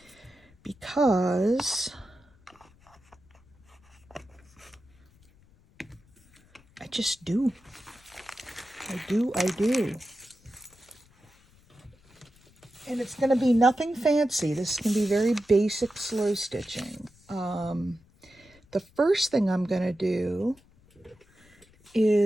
Because I just do. I do. And it's going to be nothing fancy. This is going to be very basic slow stitching. The first thing I'm going to do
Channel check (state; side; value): noise; left; rumble, 29 dB below the sound